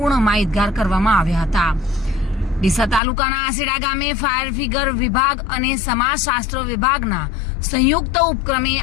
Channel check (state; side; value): drops out; right; at 3.0 s